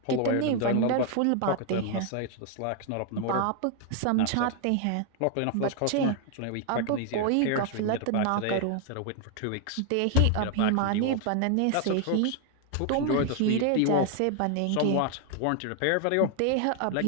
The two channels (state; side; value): different; both; correlation 0.00